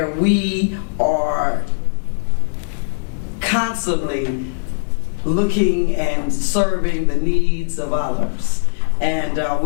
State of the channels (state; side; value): silent; right; digital silence